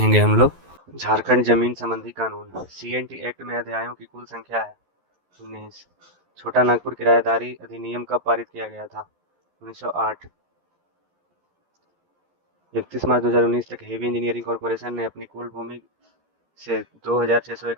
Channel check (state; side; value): late; left; 11 ms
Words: हम लोग। झारखंड जमीन संबंधी कानून। सीएनटी एक्ट में अध्यायों की कुल संख्या है 19। छोटा नागपुर किराएदारी अधिनियम कब पारित किया गया था? 1908। 31 मार्च 2019 तक हेवी इंजीनियरिंग कॉरपोरेशन ने अपनी कुल भूमि से